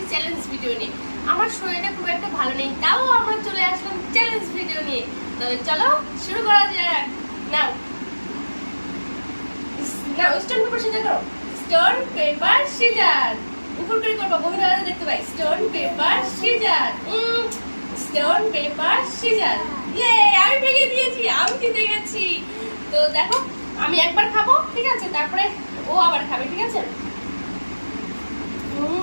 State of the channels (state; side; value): inverted; both; correlation -1.00